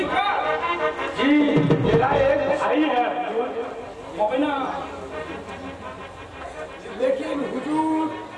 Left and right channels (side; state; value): both; identical; correlation 1.00